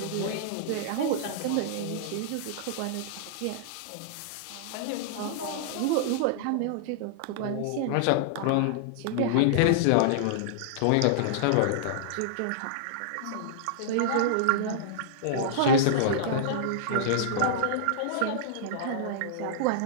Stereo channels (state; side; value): different; both; correlation -0.02